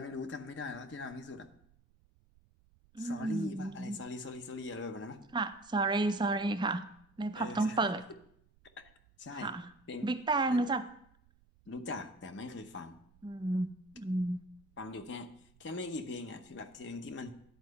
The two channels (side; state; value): right; noise; rumble, 30 dB below the sound